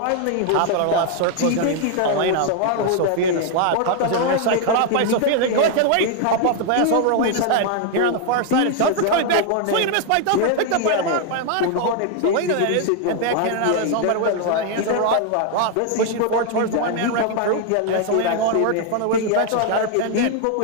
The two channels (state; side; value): different; both; correlation 0.00